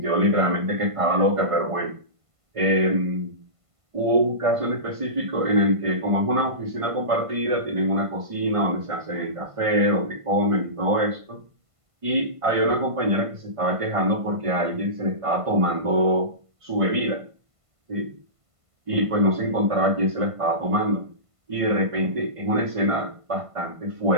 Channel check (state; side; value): late; left; 1.5 ms